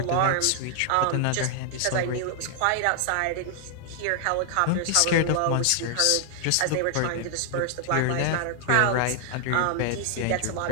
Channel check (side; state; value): both; different; correlation -0.01